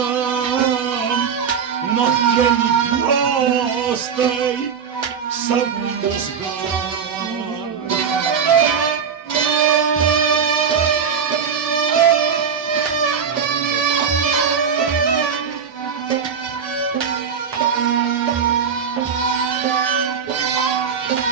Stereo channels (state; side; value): quieter; left; 6.9 dB